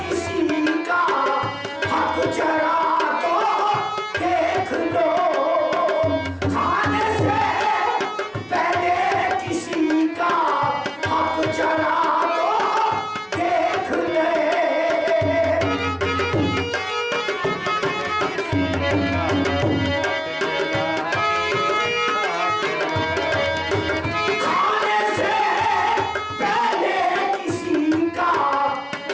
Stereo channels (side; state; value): both; identical; correlation 1.00